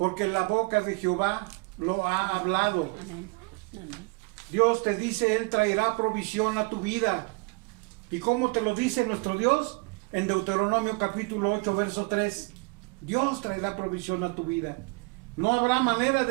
la boca de Jehová lo ha hablado. Amén. Amén. Dios te dice, Él traerá provisión a tu vida. ¿Y cómo te lo dice nuestro Dios? En Deuteronomio capítulo 8, verso 3. Dios traerá provisión a tu vida. No habrá manera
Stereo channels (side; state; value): left; quieter; 28.6 dB